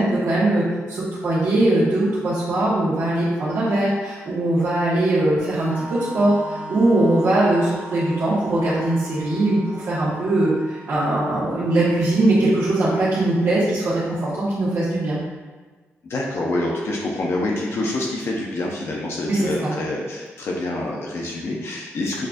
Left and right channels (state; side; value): normal; both; correlation 0.83